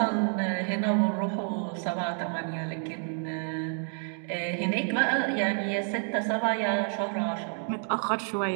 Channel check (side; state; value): left; silent; 56 dB below the other